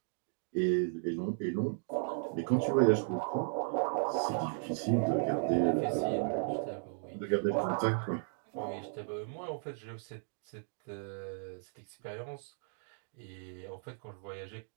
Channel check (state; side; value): silent; left; digital silence